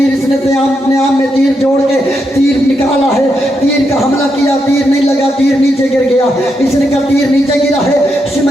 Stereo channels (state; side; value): normal; both; correlation 0.82